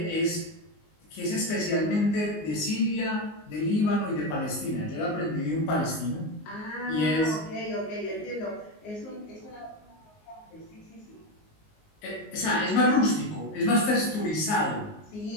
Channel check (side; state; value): right; late; 19 ms